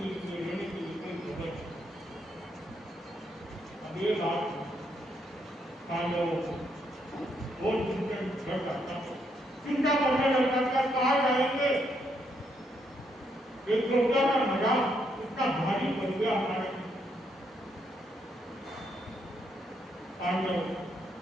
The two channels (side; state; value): both; normal; correlation 0.75